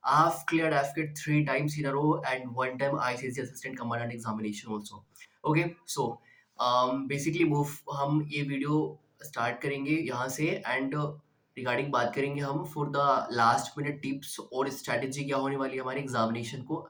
I've cleared AFCAT three times in a row and one time ICC Assistant Commandant examination also. Okay, so basically move हम ये video start करेंगे यहाँ से and regarding बात करेंगे हम for the last minute tips और strategy क्या होने वाली है हमारे एग्जामिनेशन को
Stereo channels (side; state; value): both; identical; correlation 1.00